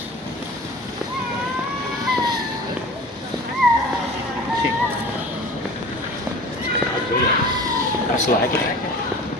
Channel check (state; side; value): normal; both; correlation 0.40